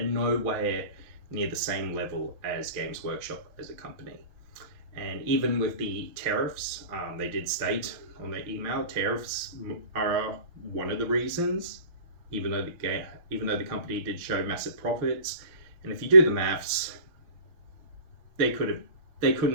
nowhere near the same level as Games Workshop as a company. And even with the tariffs, they did state on their email, tariffs are one of the reasons, even though the company did show massive profits. And if you do the maths, they could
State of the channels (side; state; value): left; late; 6.3 ms